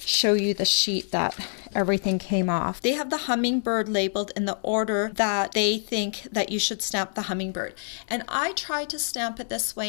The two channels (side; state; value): right; silent; 61 dB below the other